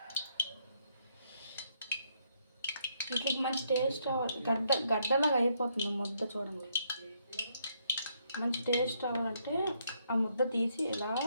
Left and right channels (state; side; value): inverted; both; correlation -0.74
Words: వీటికి మంచి టేస్ట్ రావాలి. గడ్డలాగా అయిపోతుంది ముద్ద. చూడండి, మంచి టేస్ట్ రావాలంటే ఆ ముద్ద తీసి ఇలా